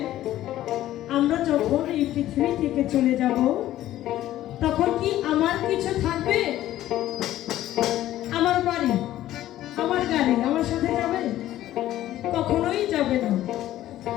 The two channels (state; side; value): quieter; right; 13.8 dB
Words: আমরা যখন এই পৃথিবী থেকে চলে যাব তখন কি আমার কিছু থাকবে? আমার বাড়ি, আমার গাড়ি আমার সাথে যাবে? কখনোই যাবে না।